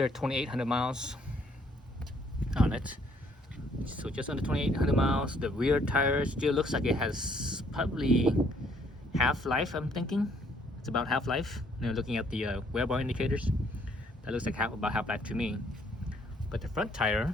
2,800 miles on it. So just under 2,800 miles. The rear tire still looks like it has probably half life, I'm thinking. It's about half life. Looking at the wear bar indicators, that looks like about half life to me. But the front tire,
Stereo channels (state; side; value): normal; both; correlation 0.65